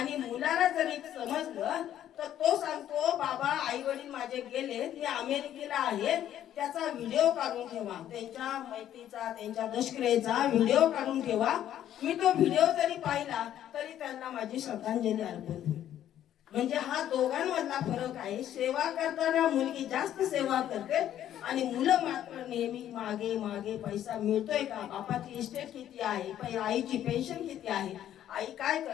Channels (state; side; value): quieter; right; 11.3 dB